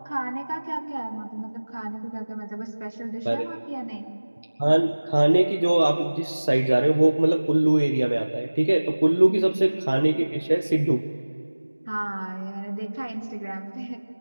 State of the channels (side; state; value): both; inverted; correlation -1.00